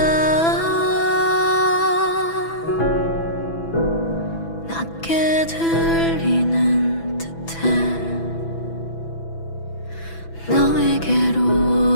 낮게 들리는 듯해 너에게로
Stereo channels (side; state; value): right; late; 6.0 ms